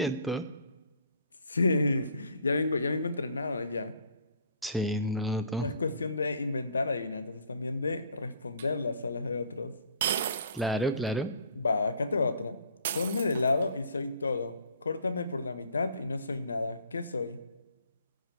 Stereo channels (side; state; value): both; inverted; correlation -0.54